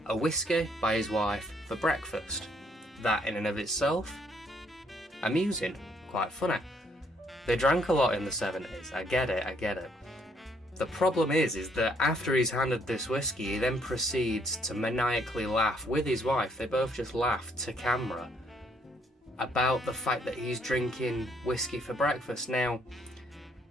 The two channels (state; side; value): normal; both; correlation 0.68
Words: a whiskey by his wife for breakfast. That in and of itself, amusing, quite funny. They drank a lot in the 70s, I get it. The problem is that after he's handed this whiskey, he then proceeds to maniacally laugh with his wife. They both just laugh to camera about the fact that he's drinking whiskey for breakfast. Now,